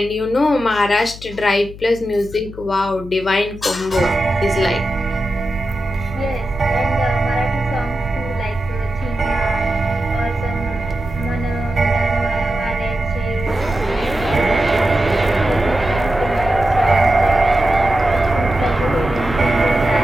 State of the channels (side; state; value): left; noise; hum, 15 dB below the sound